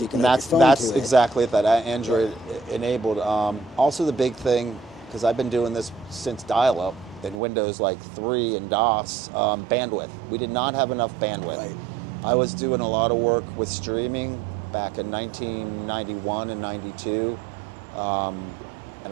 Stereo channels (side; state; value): left; drops out; at 7.4 s